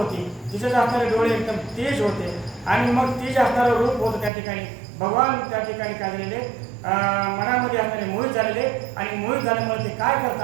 तिचे असणारे डोळे एकदम तेज होते आणि मग ती जे असणारं रूप होतं त्या ठिकाणी भगवान त्या ठिकाणी काय झालेले मनामध्ये असणारे मोहित झालेले आणि मोहित झाल्यामुळे ते काय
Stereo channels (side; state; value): left; drops out; at 4.3 s